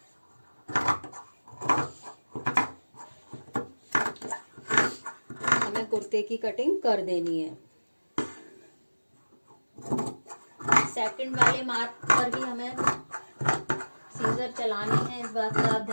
हमें कुर्ते की कटिंग कर देनी है। सेकंड वाले मार्क पर ही हमें सीजर चलानी है, इस बात का आप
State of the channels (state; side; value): inverted; both; correlation -1.00